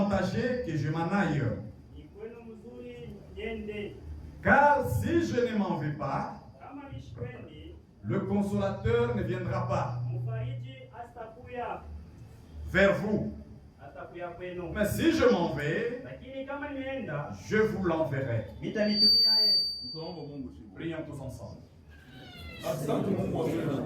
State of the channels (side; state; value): both; identical; correlation 1.00